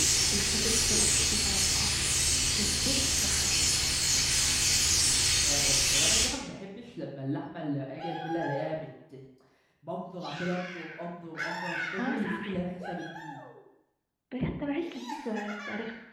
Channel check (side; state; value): both; identical; correlation 1.00